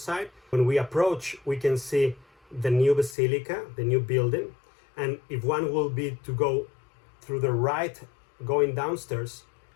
When we approach, we can see the new basilica, the new building. And if one will be to go through the right, going downstairs,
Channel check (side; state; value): right; drops out; at 3.2 s